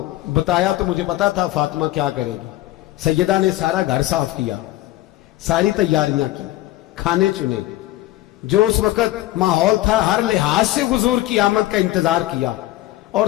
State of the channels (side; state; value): right; quieter; 15.9 dB